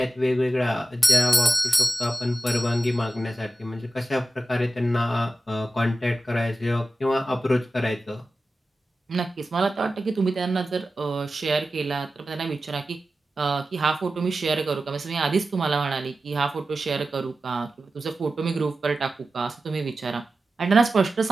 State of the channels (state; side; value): normal; both; correlation 0.93